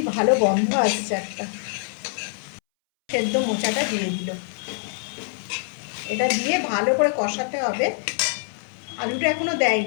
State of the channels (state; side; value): silent; right; 62 dB below the other